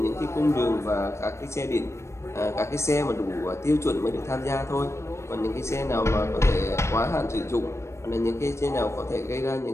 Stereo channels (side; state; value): right; late; 0.13 ms